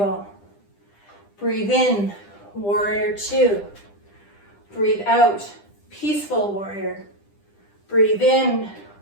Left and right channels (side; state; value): right; late; 10 ms